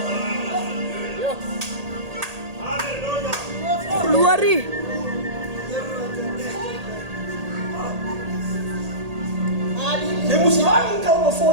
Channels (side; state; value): left; late; 1.8 ms